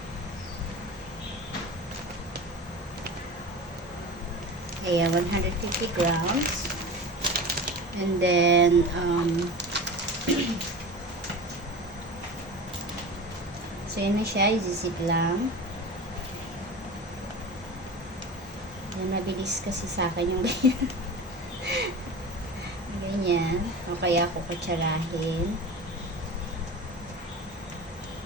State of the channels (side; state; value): both; normal; correlation 0.32